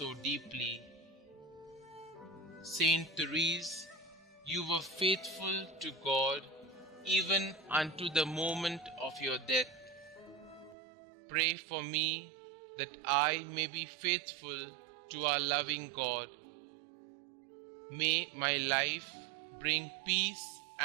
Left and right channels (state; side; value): drops out; left; at 10.8 s